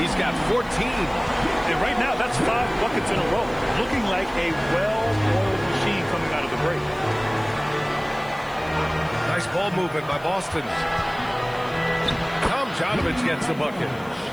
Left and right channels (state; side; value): noise; left; hiss, 25 dB below the sound